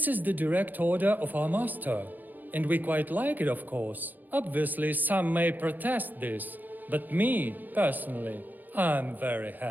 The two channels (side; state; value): left; late; 0.085 ms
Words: is the direct order of our master. And we quite like it, of course. Obviously, some may protest this. But me, personally, I'm very